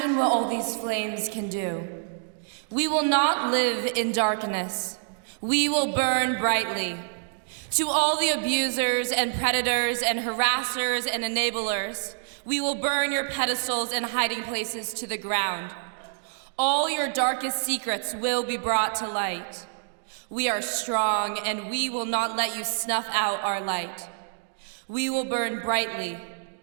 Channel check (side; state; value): left; silent; digital silence